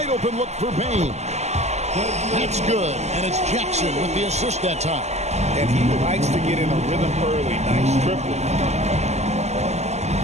open look for Bane. That's good. And it's Jackson with the assist that time. And he likes to get in a rhythm early. Nice triple.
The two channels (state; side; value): late; left; 0.33 ms